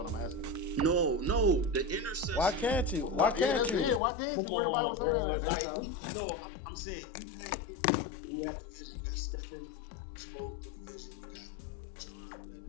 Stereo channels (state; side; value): drops out; right; at 4.0 s